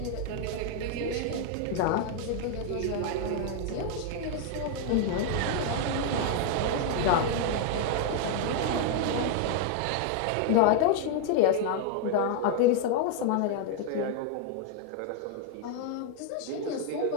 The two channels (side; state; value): both; different; correlation 0.00